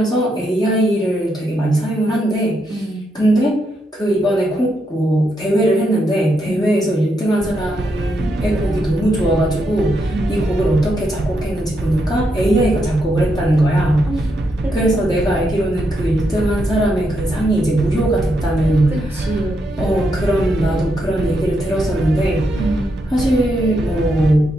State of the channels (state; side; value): normal; both; correlation 0.80